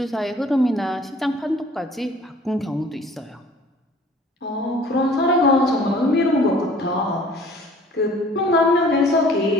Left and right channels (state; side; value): normal; both; correlation 0.52